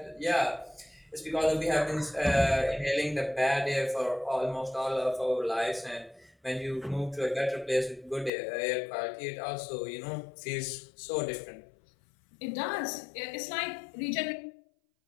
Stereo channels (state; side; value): drops out; right; at 8.3 s